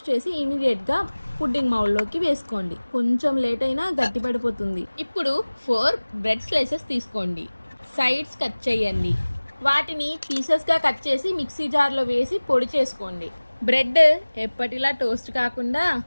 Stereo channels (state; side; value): inverted; both; correlation -1.00